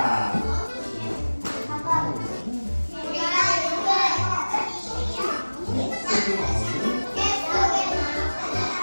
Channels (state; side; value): inverted; both; correlation -1.00